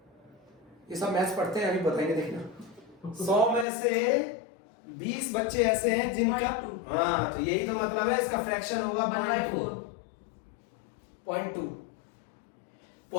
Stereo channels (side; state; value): right; drops out; at 3.7 s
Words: ये सब मैथ्स पढ़ते हैं, अभी बताएंगे, देखना। 100 में से 20 बच्चे ऐसे हैं जिनका, हाँ, तो यही तो मतलब है, इसका फ्रैक्शन होगा 0.2।